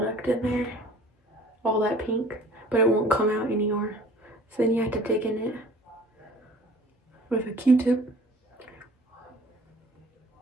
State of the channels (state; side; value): normal; both; correlation 0.50